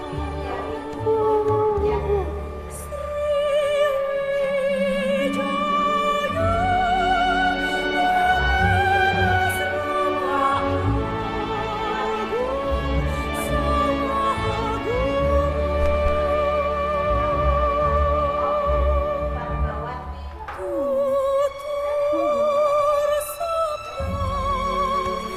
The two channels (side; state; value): both; identical; correlation 1.00